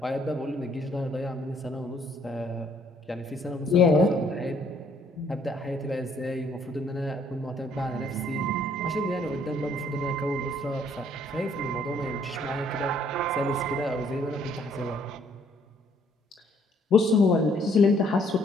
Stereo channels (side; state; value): both; normal; correlation 0.64